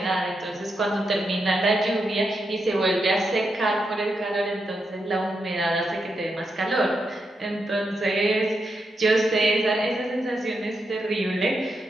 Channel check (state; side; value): normal; both; correlation 0.84